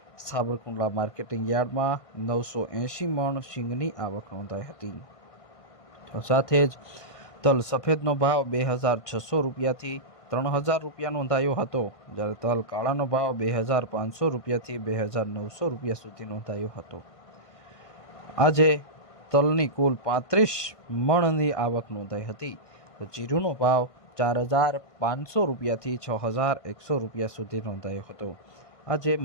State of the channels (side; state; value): right; late; 1.5 ms